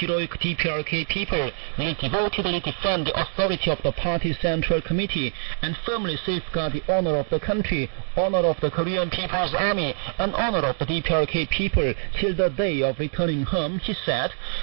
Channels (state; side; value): silent; left; 62 dB below the other